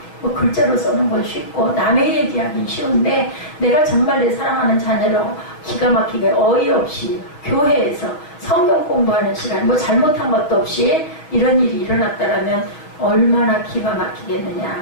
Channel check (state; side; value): late; right; 6.4 ms